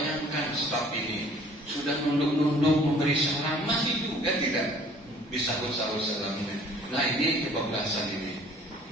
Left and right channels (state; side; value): normal; both; correlation 0.54